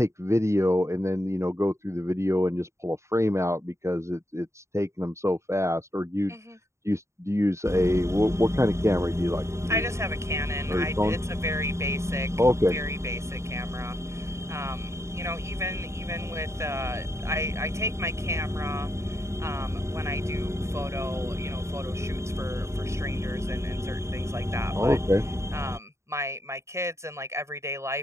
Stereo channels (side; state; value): left; late; 0.14 ms